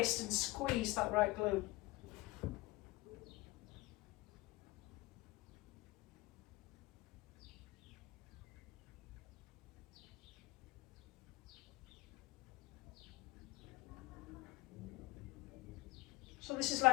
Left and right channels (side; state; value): right; quieter; 20.7 dB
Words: and squeeze that right glute. So this is